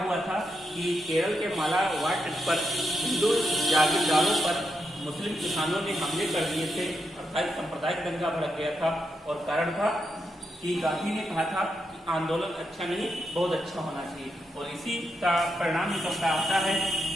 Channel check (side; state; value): both; normal; correlation 0.84